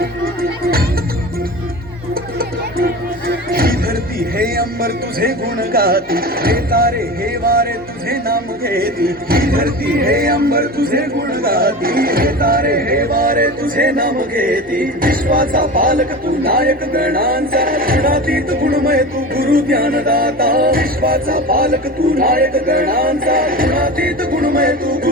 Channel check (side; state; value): both; normal; correlation 0.31